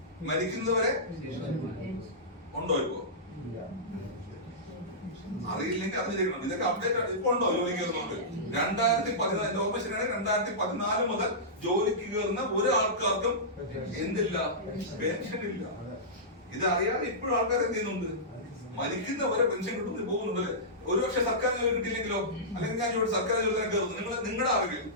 ഉണ്ടോ? ഇപ്പോ അറിയില്ലെങ്കിൽ അത് ചെയ്യണം. ഇതൊക്കെ അപ്ഡേറ്റ് ഇപ്പൊ ഉണ്ടോ ജോലിക്ക് കയറുന്നുണ്ട്? 2014 ഓർമ്മ ശരിയാണ്, 2014 മുതൽ ജോലിക്ക് കയറുന്ന ഒരു ആൾക്കാർക്കും എന്തില്ല, പെൻഷൻ ഇല്ല. ഇത് അറിയാതെ ഇപ്പോഴും ആൾക്കാർ എന്ത് ചെയ്യുന്നുണ്ട്, മരിക്കുന്നവരെ പെൻഷൻ കിട്ടുന്നത് പോകുന്നുണ്ടല്ലേ. ഒരുപക്ഷെ സർക്കാർ ജോലി കിട്ടിയില്ലെങ്കിലോ, അല്ലെങ്കിൽ ഞാൻ ഇവിടെ സർക്കാർ ജോലി തന്നെ കയറുന്നു, നിങ്ങളുടെ അറിവിൽ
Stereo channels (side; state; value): both; normal; correlation -0.16